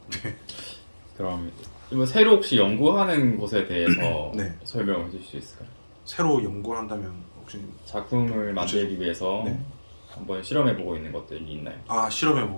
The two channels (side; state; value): both; inverted; correlation -1.00